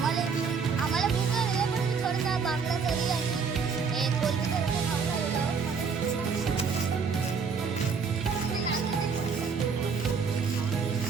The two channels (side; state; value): left; quieter; 5.6 dB